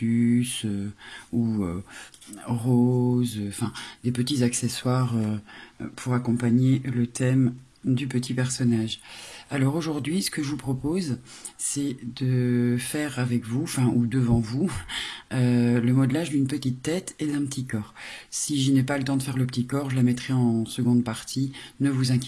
ou roses, enfin des petits accessoires pour accompagner le thème du petit personnage. Alors aujourd'hui, ce que je vous propose, c'est de faire avec vous, enfin ou devant vous, le modelage d'une petite tête et d'un petit corps. Si je n'ai pas le temps de faire le petit corps, je la mettrai en seconde partie, ne vous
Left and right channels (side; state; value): both; identical; correlation 1.00